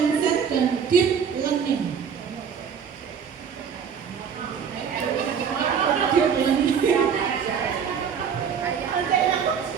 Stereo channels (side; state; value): left; quieter; 7.1 dB